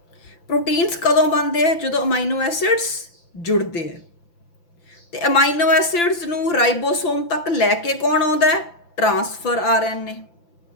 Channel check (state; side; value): late; right; 5.9 ms